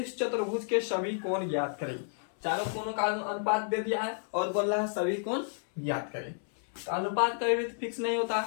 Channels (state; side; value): silent; right; 57 dB below the other